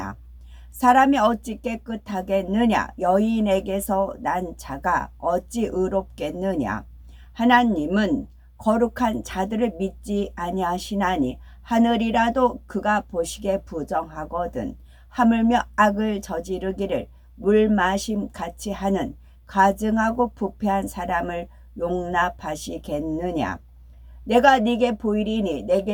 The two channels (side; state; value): both; identical; correlation 1.00